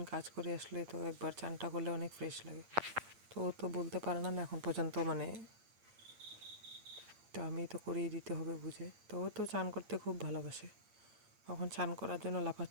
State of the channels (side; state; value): left; late; 8.6 ms